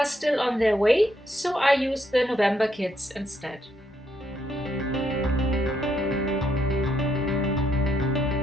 still on their way, so I use the November kits instead.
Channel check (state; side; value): normal; both; correlation 0.75